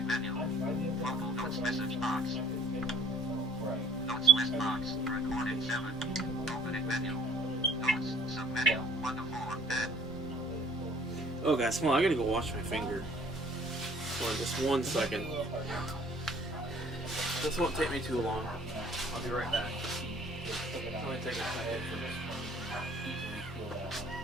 menu. Local notes message box. Right. Notes list box. Recording 7. Opening menu. Notes. Submenu 1 of 4. Add. Oh, guys, come on, I gotta go wash my finger. For just 1 second. This won't take me too long. I'll be right back. It's only take a second.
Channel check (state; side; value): normal; both; correlation 0.54